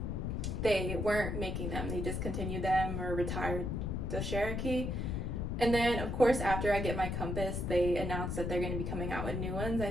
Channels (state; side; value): noise; left; rumble, 2 dB below the sound